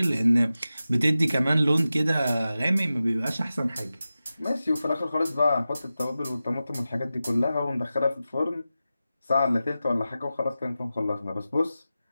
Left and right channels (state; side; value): inverted; both; correlation -0.94